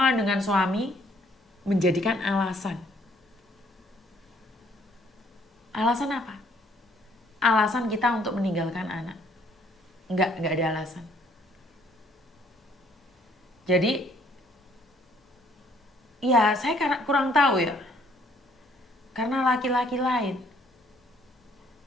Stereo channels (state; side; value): normal; both; correlation 0.63